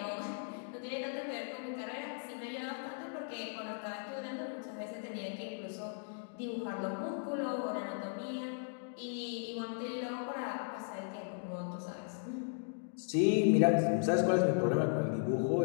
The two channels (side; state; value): right; silent; digital silence